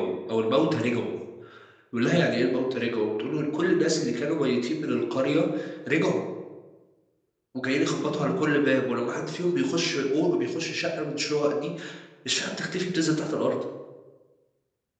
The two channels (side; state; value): both; identical; correlation 1.00